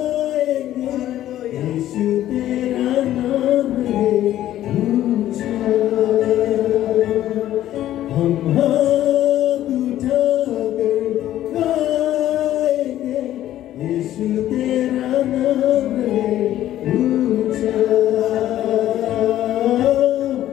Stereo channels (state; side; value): quieter; right; 12.9 dB